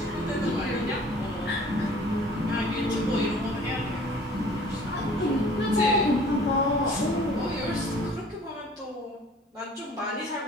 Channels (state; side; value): normal; both; correlation 0.51